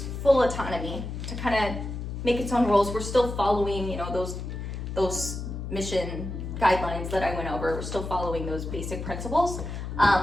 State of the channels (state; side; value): noise; left; hum, 6 dB below the sound